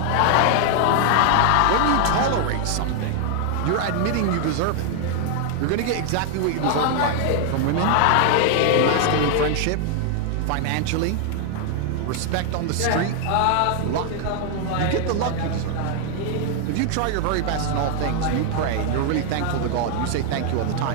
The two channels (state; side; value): different; both; correlation 0.00